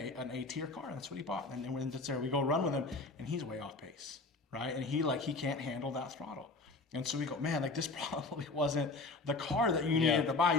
an A-tier car, and that's what he bought. And then when it's there, we go run with him, and he's way off pace, right? And he can't handle that throttle. And so we go, man, like this probably wasn't the car that you needed to buy.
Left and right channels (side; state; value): right; quieter; 3.5 dB